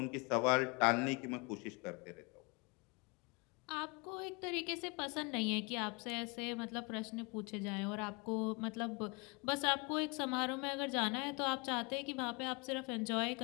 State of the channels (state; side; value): quieter; right; 30.1 dB